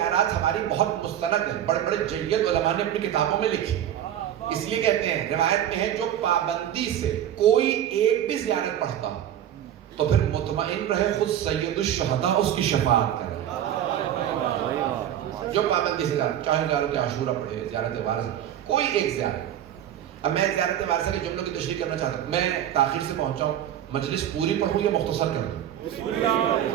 ہماری بہت مستند ہیں، بڑے بڑے جید علماء نے اپنی کتابوں میں لکھی، اس لیے کہتے ہیں، روایت میں ہے جو پابندی سے کوئی ایک بھی زیارت پڑھتا تو پھر مطمئن رہے خود سید الشہداء اس کی شفاعت کرے۔ جو پابندی سے چاہے زیارت عاشورہ پڑھے، زیارت وارثہ، کوئی ایک زیارت۔ اب میں زیارت وارثہ کے جملوں کی تشریح کرنا چاہتا ہوں، میں تاخیر سے پہنچا ہوں، مجلس پوری پڑھوں یا مختصر کر دوں؟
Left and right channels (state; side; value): quieter; left; 10.9 dB